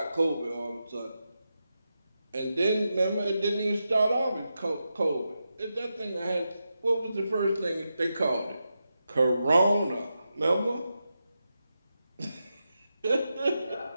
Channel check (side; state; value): both; inverted; correlation -0.88